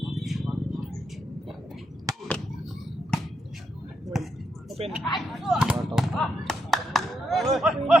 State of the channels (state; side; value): normal; both; correlation 0.80